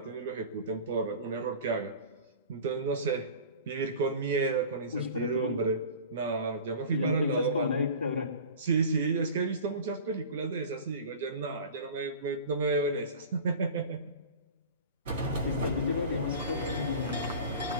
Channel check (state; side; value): inverted; both; correlation -0.38